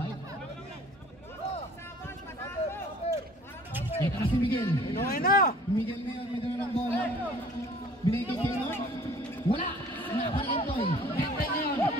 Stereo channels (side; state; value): both; normal; correlation 0.52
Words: Ito na si Miguel. Inuwi na! Miguel na yun, may dala ng bola. Binigay kay Keno. Wala! Nakapalikin Toy. Kentoy ngayon.